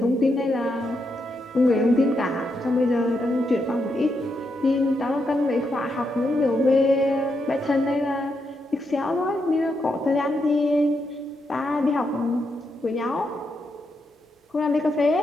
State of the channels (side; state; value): both; normal; correlation 0.82